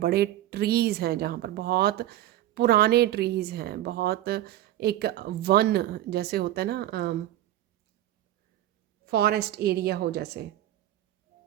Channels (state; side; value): quieter; left; 13.5 dB